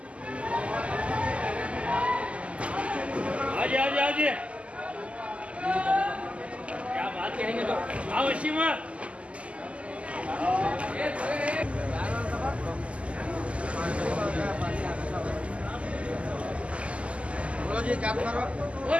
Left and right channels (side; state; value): left; late; 0.060 ms